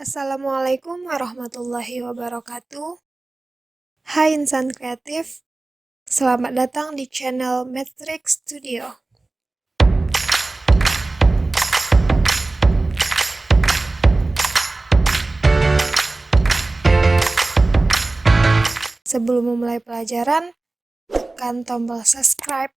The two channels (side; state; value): left; quieter; 3.1 dB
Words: Assalamualaikum warahmatullahi wabarakatuh. Hai insan kreatif, selamat datang di channel Matrix Studio. Sebelum memulai pelajaran, tekan tombol subscribe